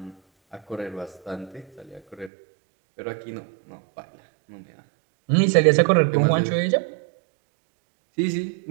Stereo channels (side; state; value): left; drops out; at 2.3 s